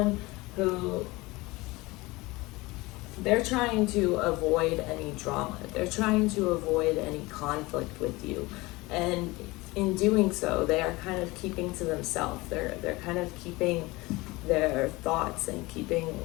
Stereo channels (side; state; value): right; quieter; 22.0 dB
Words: who, they're trying to avoid any drama. They're trying to avoid any conflict with you. And in doing so, they are kind of keeping to themselves. They're kind of keeping their thoughts and keeping